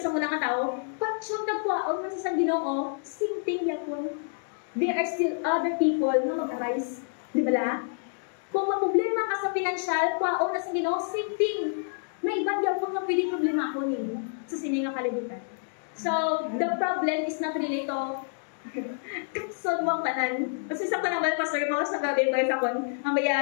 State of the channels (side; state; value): right; silent; digital silence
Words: una nga tao, patsyon nagkuhaon na sa Ginoo, same thing yapon. There are still other people na mag-arise. Di ba la? Kung maproblema ka sa financial, kuhaon na sa Ginoo, same thing. May ibang yapon nga pwede problema ako nimo sa sining nga kalibutan. So, the problem is not really to kapson mo ang tanan. Kasi sa panambal, pastor mo, sa gabi ko sa kon,